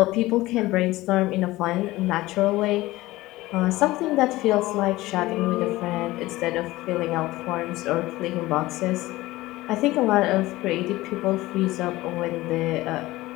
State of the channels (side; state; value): right; quieter; 18.3 dB